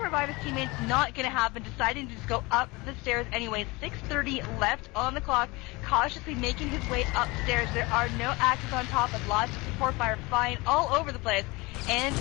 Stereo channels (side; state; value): right; quieter; 24.0 dB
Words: revive his teammates. Not going to happen. Deciding to just go up the stairs anyway. 6:30 left on the clock. Cautiously making his way upstairs. There are no axes on top, and lots of support fire flying all over the place. And